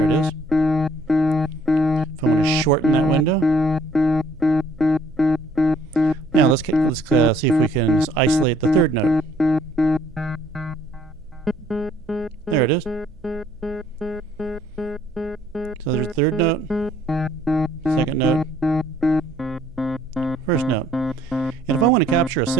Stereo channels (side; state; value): right; noise; hum, 27 dB below the sound